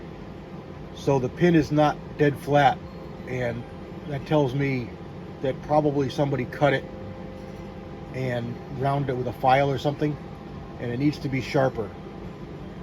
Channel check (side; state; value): both; identical; correlation 1.00